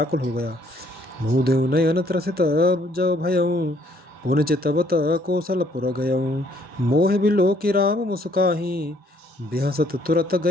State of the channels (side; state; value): both; normal; correlation 0.65